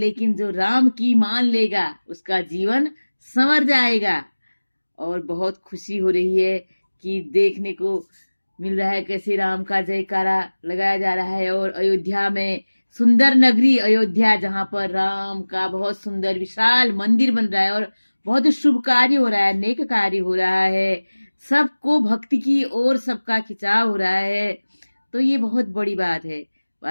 जो राम की मान लेगा उसका जीवन संवर जाएगा। और बहुत खुशी हो रही है कि देखने को मिल रहा है कैसे राम का जयकारा लगाया जा रहा है। और अयोध्या में, सुंदर नगरी अयोध्या, जहाँ पर राम का बहुत सुंदर विशाल मंदिर बन रहा है और बहुत शुभ कार्य हो रहा है, नेक कार्य हो रहा है, सबको भक्ति की ओर सबका खिंचाव हो रहा है। तो ये बहुत बड़ी बात है।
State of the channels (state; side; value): inverted; both; correlation -1.00